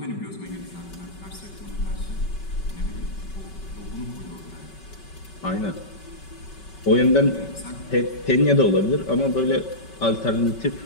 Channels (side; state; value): right; late; 5.3 ms